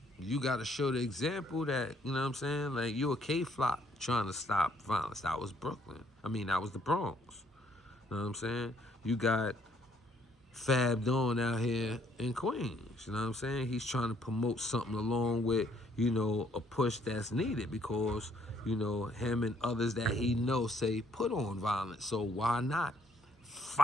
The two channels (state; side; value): normal; both; correlation 0.66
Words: you got to show the example that, you know what I'm saying? Like, you a K-flop trying to stop violence. That was Brooklyn. That was the Bronx. You know what I'm saying? You got Fab Dawn out here in Queens. You know what I'm saying? He's trying to promote something along with, a push that's needed because, him and others that he knows say put on violence. So why not